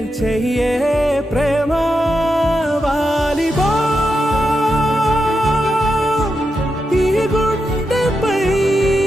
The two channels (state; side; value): normal; both; correlation 0.87